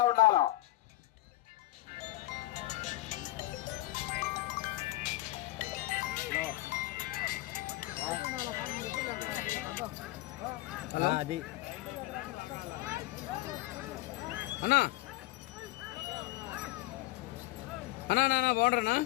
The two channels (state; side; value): quieter; right; 17.9 dB